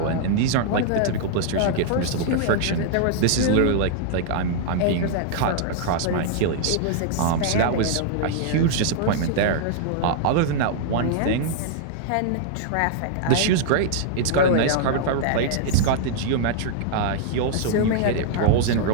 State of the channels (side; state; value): both; different; correlation -0.01